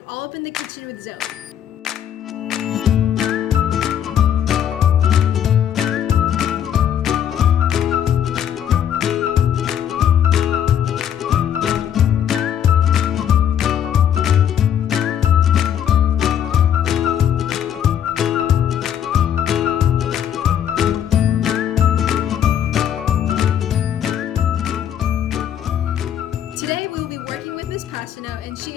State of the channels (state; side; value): quieter; right; 9.4 dB